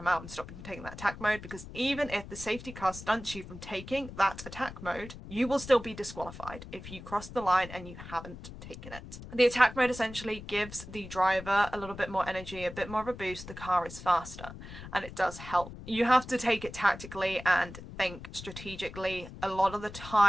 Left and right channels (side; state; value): left; noise; rumble, 13 dB below the sound